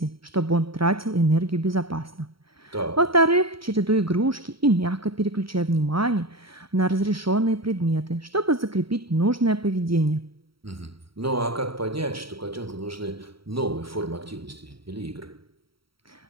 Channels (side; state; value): left; late; 0.75 ms